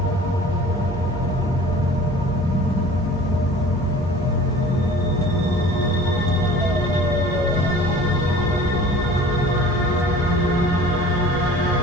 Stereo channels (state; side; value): normal; both; correlation 0.45